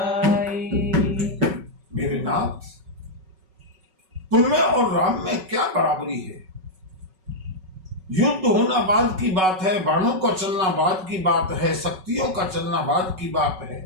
मेरे नाथ, तुममें और राम में क्या बराबरी है? युद्ध होना बाद की बात है, बाणों का चलना बाद की बात है, शक्तियों का चलना बाद की बात है।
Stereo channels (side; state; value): left; late; 5.3 ms